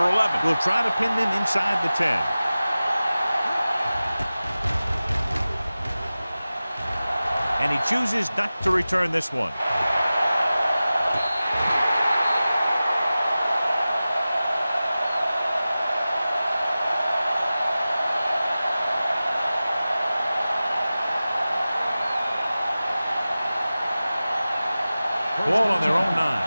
11 will try to pin them inside the 10. And he chooses not to return this one. Ball on their own 9.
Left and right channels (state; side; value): inverted; both; correlation -0.96